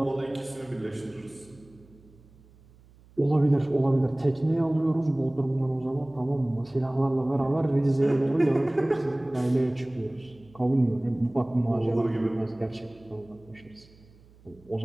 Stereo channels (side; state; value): right; noise; hum, 27 dB below the sound